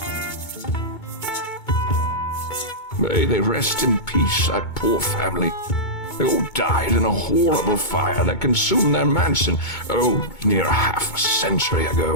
May they rest in peace, that poor family. They all died in a horrible fire that consumed their mansion, near half a century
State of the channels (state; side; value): late; right; 2.2 ms